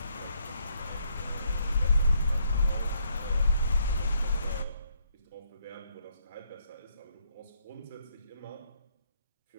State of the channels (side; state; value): both; inverted; correlation -0.72